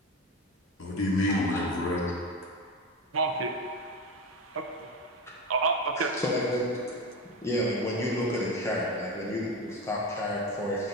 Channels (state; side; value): normal; both; correlation 0.22